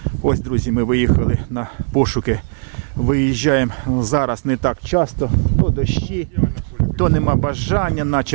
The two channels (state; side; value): silent; left; digital silence